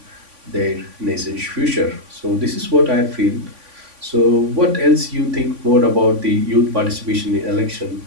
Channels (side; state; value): left; late; 3.5 ms